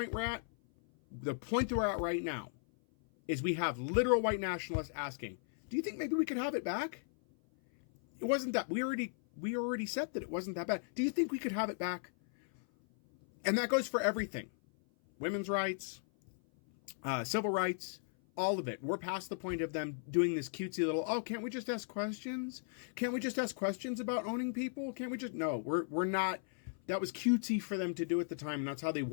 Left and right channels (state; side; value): silent; right; 54 dB below the other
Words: we're at? The point that we're at right now is we have literal white nationalists asking, do you think maybe we could have it back? It wasn't that, we already said that it wasn't that bad. Do you think we could have it back? And that goes for everything. Women's rights, civil rights, all of it. We're past the point of them doing this cutesy little, oh, can't we just ask questions? Can't we just ask questions about owning people? Can't we just, no, we're not, that was cutesy for them to do at the time, and that's how they